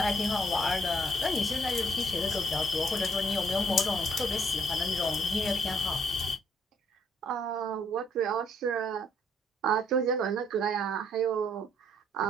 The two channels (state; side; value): normal; both; correlation 0.67